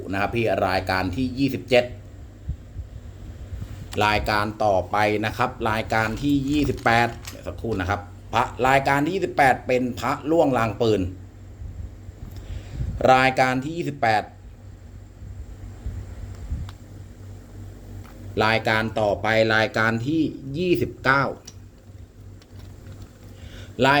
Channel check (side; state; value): both; identical; correlation 1.00